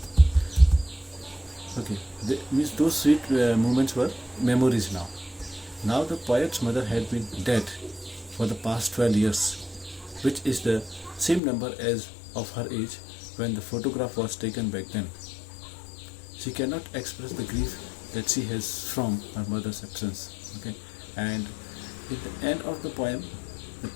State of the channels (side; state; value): right; drops out; at 11.4 s